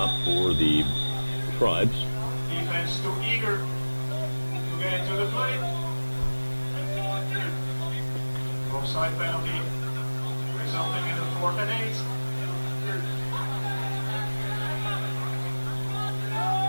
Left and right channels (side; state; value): both; inverted; correlation -1.00